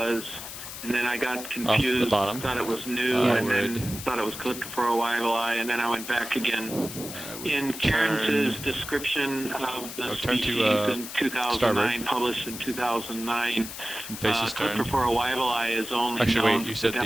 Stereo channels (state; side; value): noise; left; hiss, 10 dB below the sound